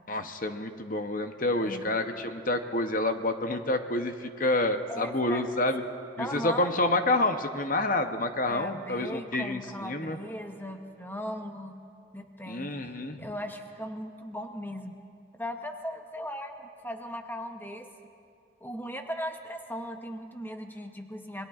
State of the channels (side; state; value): both; normal; correlation 0.09